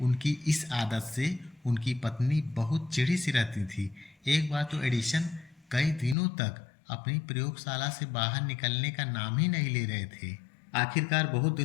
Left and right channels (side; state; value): right; drops out; at 6.2 s